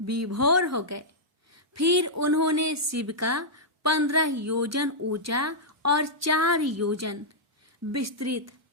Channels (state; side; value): normal; both; correlation -0.09